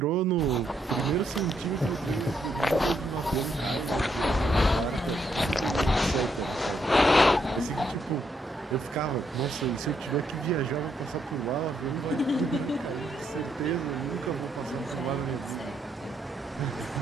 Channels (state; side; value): normal; both; correlation 0.76